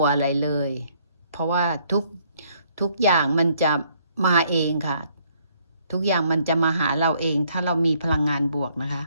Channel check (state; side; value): inverted; both; correlation -0.66